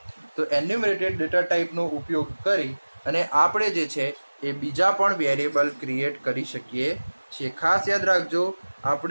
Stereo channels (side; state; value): both; inverted; correlation -1.00